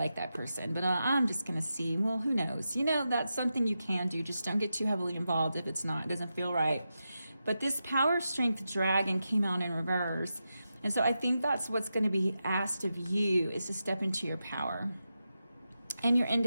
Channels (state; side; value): inverted; both; correlation -0.89